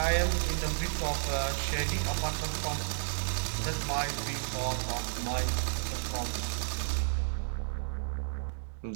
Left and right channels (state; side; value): silent; left; digital silence